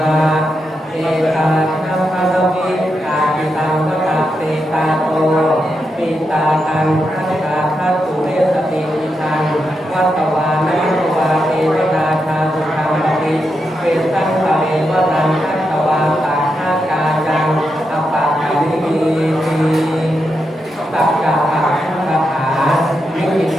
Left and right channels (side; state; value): both; normal; correlation 0.85